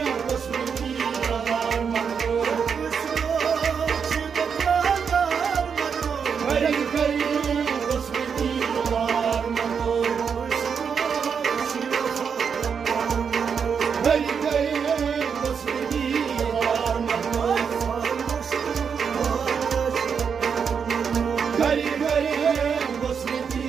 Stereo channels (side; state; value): left; quieter; 6.6 dB